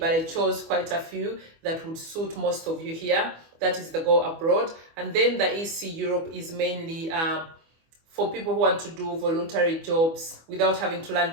I chose quite a few that would suit most of you here. That is the Go Abroad. And then the EC Europe is mainly for people who want to do voluntary jobs without having to learn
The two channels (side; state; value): left; late; 24 ms